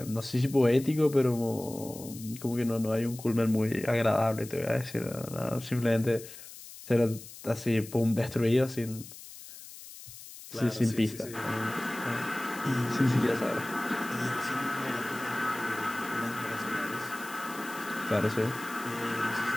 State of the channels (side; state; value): left; noise; hiss, 15 dB below the sound